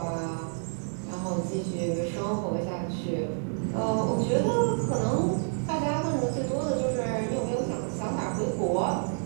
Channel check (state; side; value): silent; left; digital silence